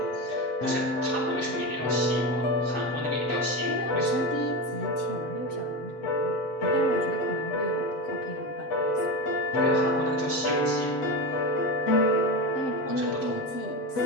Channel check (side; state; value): right; late; 7.5 ms